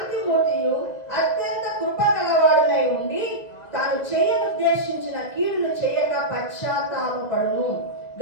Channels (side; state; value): right; late; 2.0 ms